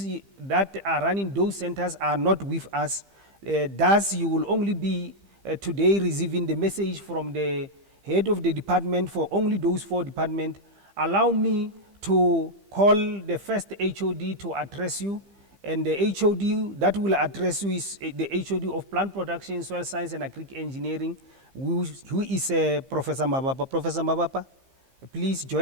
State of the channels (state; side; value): late; left; 15 ms